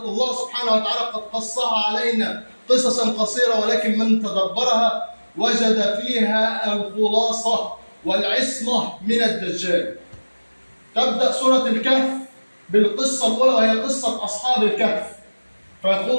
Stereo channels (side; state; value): both; inverted; correlation -1.00